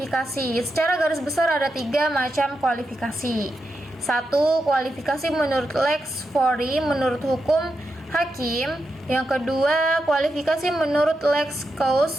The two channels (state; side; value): normal; both; correlation 0.87